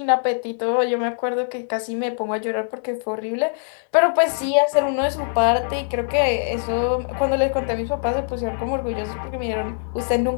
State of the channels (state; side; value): silent; right; digital silence